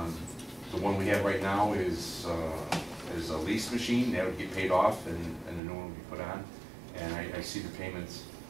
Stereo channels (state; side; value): drops out; left; at 5.6 s